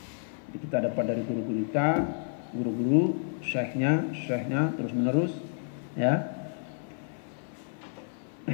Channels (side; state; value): right; silent; 58 dB below the other